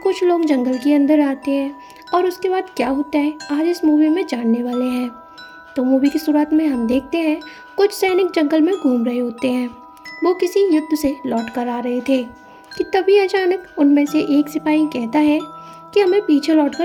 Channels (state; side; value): identical; both; correlation 1.00